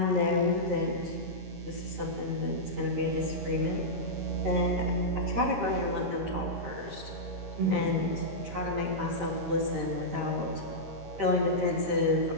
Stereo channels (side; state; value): left; late; 13 ms